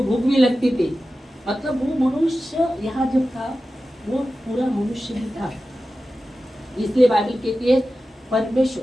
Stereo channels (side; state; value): both; normal; correlation 0.94